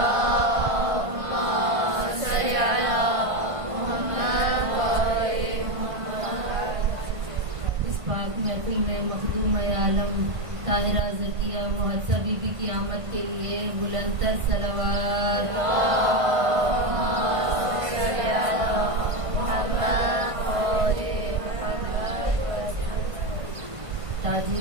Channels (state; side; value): late; left; 1.5 ms